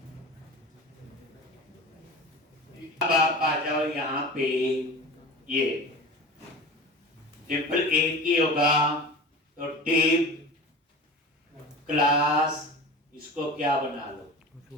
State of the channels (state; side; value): normal; both; correlation 0.34